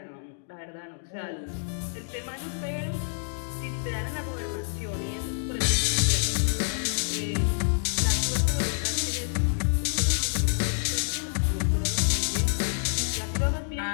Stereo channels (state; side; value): silent; right; digital silence